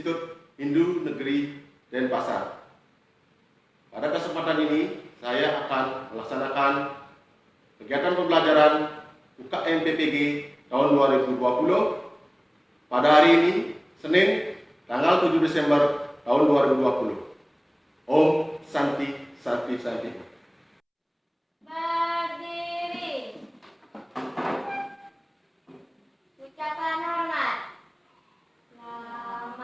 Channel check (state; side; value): identical; both; correlation 1.00